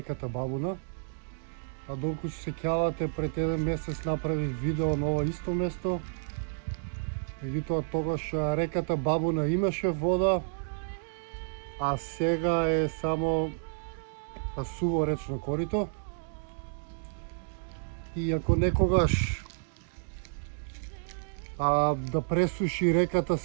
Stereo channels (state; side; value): silent; left; digital silence